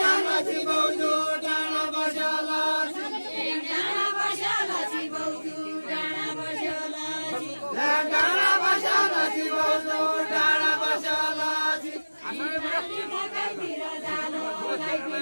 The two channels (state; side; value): inverted; both; correlation -1.00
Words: नची बौजू डाँडा बस्यो नची डाँडा बस्यो नची बौजू डाँडा बस्यो नची डाँडा बस्यो नची बौजू डाँडा बस्यो नची लाइतिर जालो